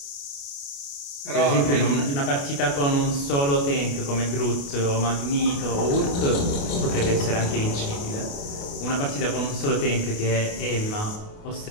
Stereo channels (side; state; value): right; late; 28 ms